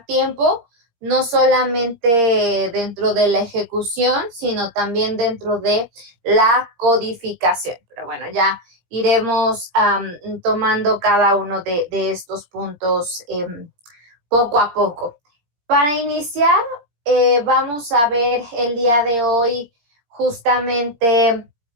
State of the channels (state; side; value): late; left; 17 ms